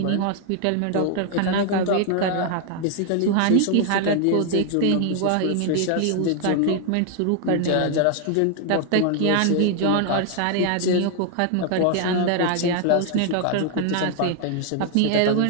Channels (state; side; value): different; both; correlation 0.00